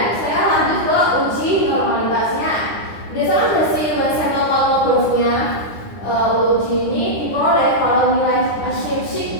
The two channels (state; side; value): late; right; 9.9 ms